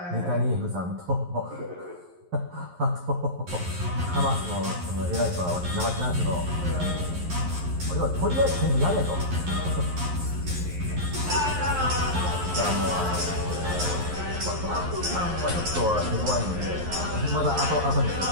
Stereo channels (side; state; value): left; late; 11 ms